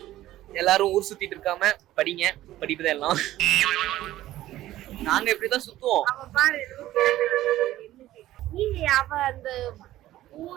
எல்லாரும் ஊர் சுத்திட்டு இருக்காம படிங்க, படிப்புதான் எல்லாம். நாங்க இப்படிதான் சுத்துவோம். அவ பாரு, நீங்க அவ அந்த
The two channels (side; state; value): left; quieter; 14.7 dB